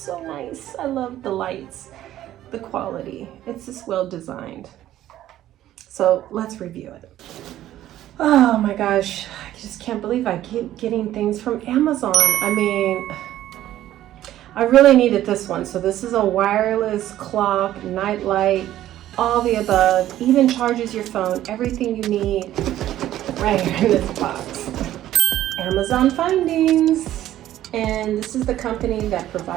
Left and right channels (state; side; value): quieter; left; 13.2 dB